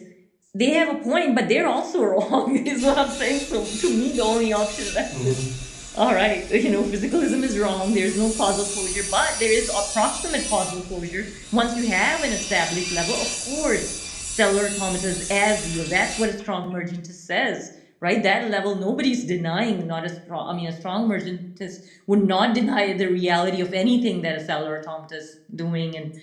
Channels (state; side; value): identical; both; correlation 1.00